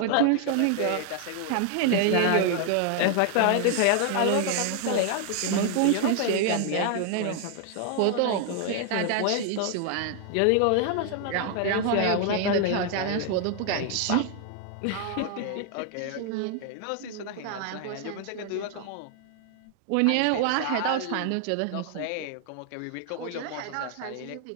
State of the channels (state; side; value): different; both; correlation 0.00